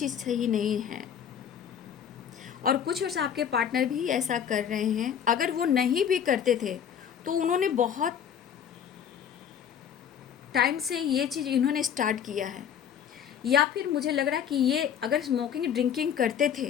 सही नहीं है। और कुछ वर्ष आपके पार्टनर भी ऐसा कर रहे हैं। अगर वो नहीं भी करते थे तो उन्होंने बहुत टाइम से ये चीज़ इन्होंने स्टार्ट किया है, या फिर मुझे लग रहा है कि ये अगर स्मोकिंग ड्रिंकिंग करते थे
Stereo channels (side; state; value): right; quieter; 8.5 dB